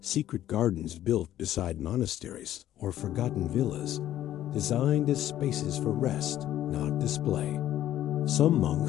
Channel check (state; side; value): quieter; right; 12.6 dB